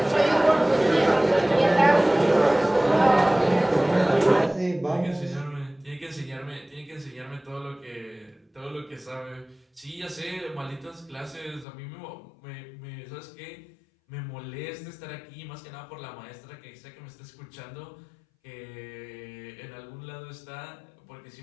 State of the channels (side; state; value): right; drops out; at 11.7 s